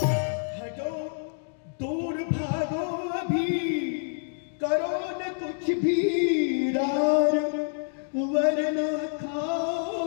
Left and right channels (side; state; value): right; silent; digital silence